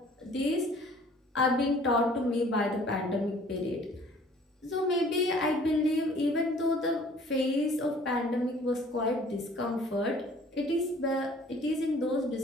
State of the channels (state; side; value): normal; both; correlation 0.54